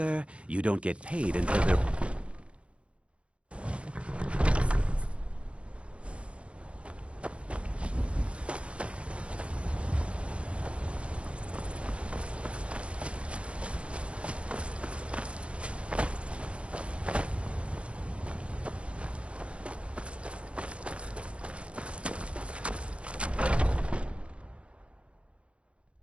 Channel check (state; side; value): late; left; 0.060 ms